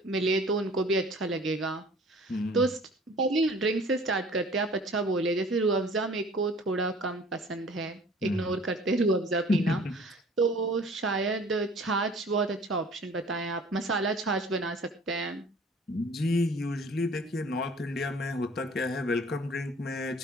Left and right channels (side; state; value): both; normal; correlation 0.50